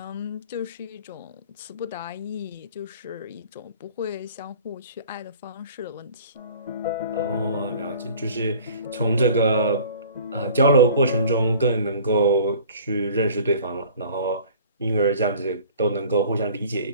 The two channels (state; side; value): inverted; both; correlation -0.48